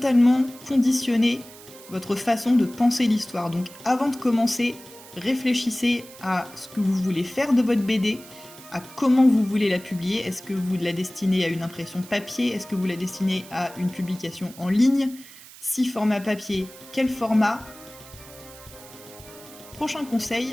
conditionner votre façon de penser l'histoire. Donc avant de commencer, réfléchissez à ce que vous voulez faire de votre BD, à comment vous voulez la publier. Est-ce que vous la destinez à une impression papier? Est-ce que vous la destinez à une publication en ligne? Si format papier, quel format? Prochain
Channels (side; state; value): right; noise; hiss, 19 dB below the sound